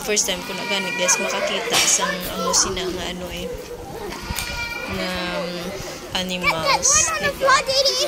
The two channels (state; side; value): identical; both; correlation 1.00